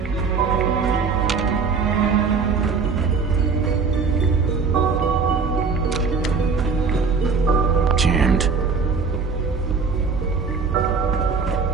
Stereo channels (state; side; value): quieter; left; 5.1 dB